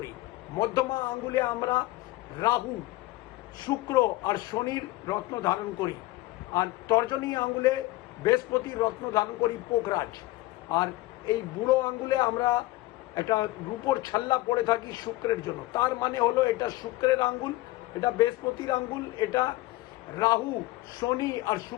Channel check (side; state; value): right; quieter; 18.4 dB